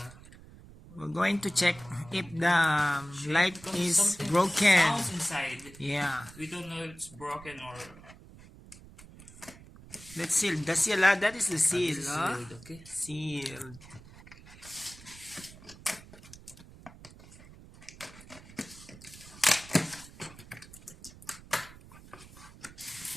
We're going to check if the light is Something broken. sounds inside. Yeah. We don't know if it's broken or. Let's seal. The seal, that is the seal. This is sealed, okay. Sealed. Okay.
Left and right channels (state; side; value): noise; right; rumble, 20 dB below the sound